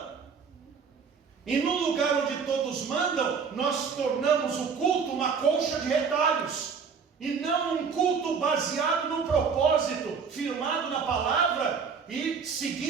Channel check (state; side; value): quieter; left; 5.8 dB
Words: E no lugar onde todos mandam, nós tornamos o culto uma colcha de retalhos, e não um culto baseado no propósito, firmado na palavra e